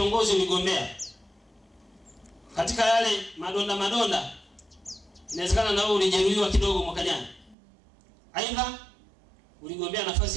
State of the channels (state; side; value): drops out; left; at 7.6 s